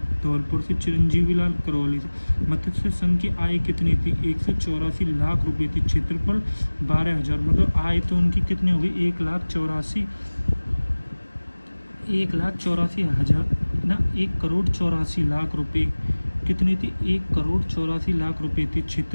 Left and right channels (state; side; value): inverted; both; correlation -1.00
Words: धौलपुर से, चिरंजीवी लाल करौली से। मत्स्य संघ की आय कितनी थी? 184 लाख रुपए थी। क्षेत्रफल 12,000। मतलब आय तो उनकी कितनी होगी? 1,84,000 रुपए। कितनी थी? 1,84,00,000 रुपए थी।